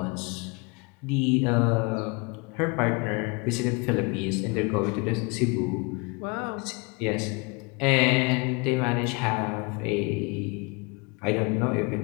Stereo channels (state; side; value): quieter; right; 29.6 dB